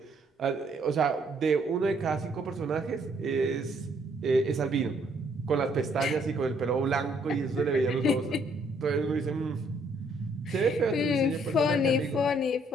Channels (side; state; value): both; normal; correlation 0.67